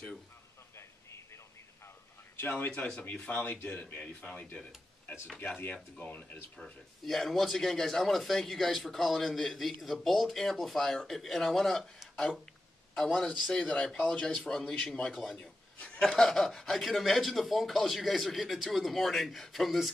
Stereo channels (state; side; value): normal; both; correlation 0.91